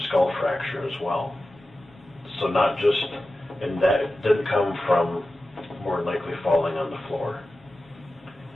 skull fracture as well. So not just, and that didn't come from more than likely falling on the floor.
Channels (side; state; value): both; normal; correlation 0.94